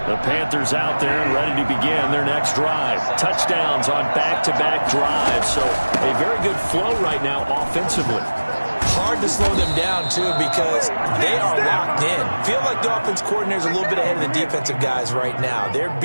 The Panthers out there and ready to begin their next drive. Touchdowns on back-to-back drives. So a very good flow right now offensively. Hard to slow them down, too, because they are locked in. Feel like the offense coordinator's a little bit ahead of the defensive guys right now. They're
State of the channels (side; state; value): both; inverted; correlation -1.00